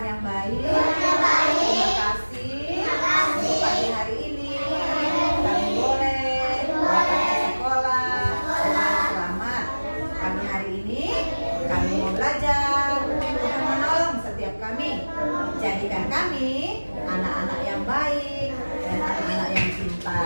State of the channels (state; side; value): inverted; both; correlation -1.00